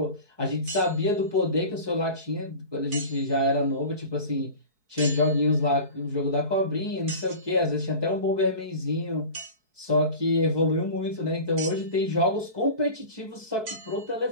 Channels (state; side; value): late; left; 4.6 ms